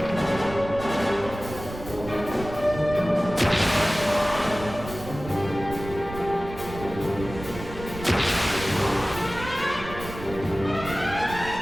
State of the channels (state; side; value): noise; right; rumble, 12 dB below the sound